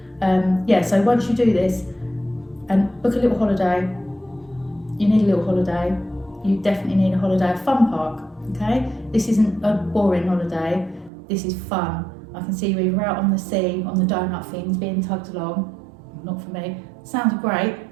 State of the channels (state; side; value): drops out; left; at 11.1 s